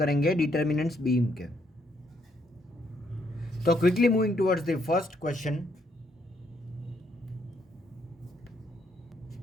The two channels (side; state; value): both; normal; correlation 0.72